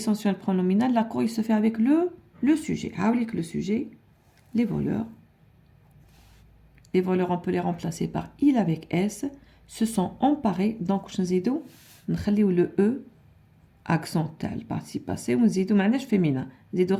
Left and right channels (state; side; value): identical; both; correlation 1.00